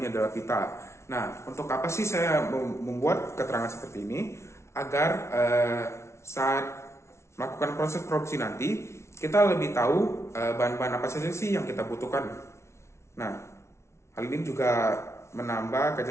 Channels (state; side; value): late; right; 0.13 ms